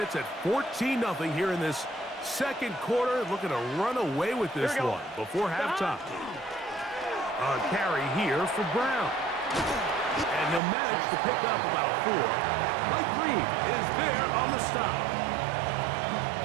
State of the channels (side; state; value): left; drops out; at 10.6 s